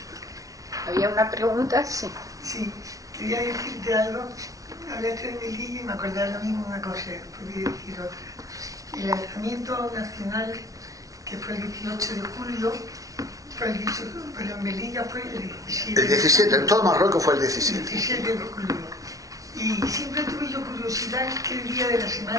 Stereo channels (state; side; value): late; left; 0.17 ms